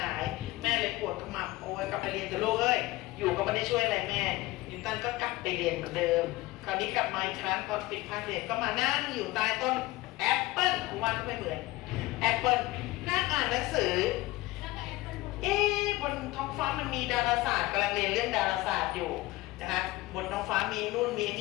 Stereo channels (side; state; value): right; quieter; 19.4 dB